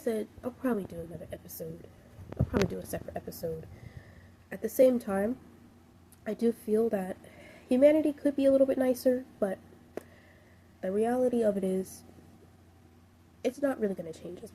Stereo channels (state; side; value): identical; both; correlation 1.00